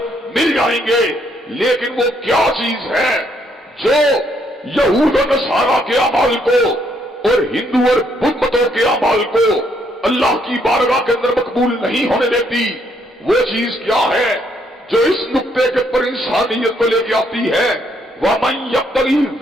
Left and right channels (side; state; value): both; normal; correlation 0.71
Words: مل جائیں گے۔ لیکن وہ کیا چیز ہے جو یہود و نصارہ کے اعمال کو اور ہندو اور بدھ متوں کے اعمال کو اللہ کی بارگاہ کے اندر مقبول نہیں ہونے دیتی؟ وہ چیز کیا ہے جو اس نقطے کے پر انسانیت کو لے کے آتی ہے؟ وَمَن يَبْتَغِي